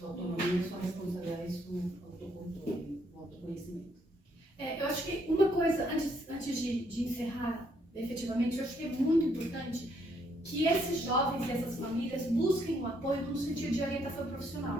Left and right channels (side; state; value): both; normal; correlation 0.71